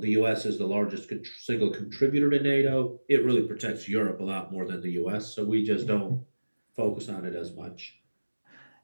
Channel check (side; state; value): both; inverted; correlation -1.00